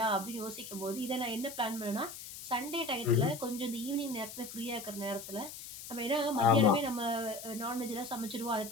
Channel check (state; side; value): noise; left; hiss, 11 dB below the sound